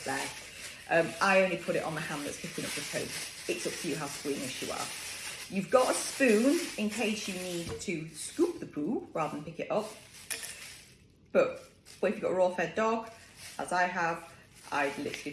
there. I only put it on the hand that's picking up the poo. It's up to you how squeamish you are. You've got a spoon in case you need to scoop the poo rather than pick it up. But if you've got a raw fed dog, as I have, I'd literally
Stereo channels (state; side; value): identical; both; correlation 1.00